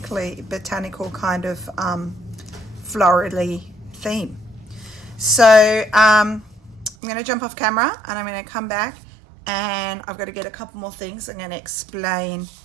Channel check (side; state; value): left; drops out; at 7.0 s